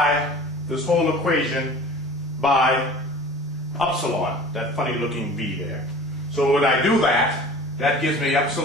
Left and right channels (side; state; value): both; normal; correlation 0.43